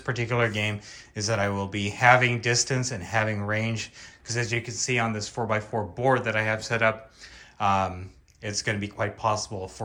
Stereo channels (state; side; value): identical; both; correlation 1.00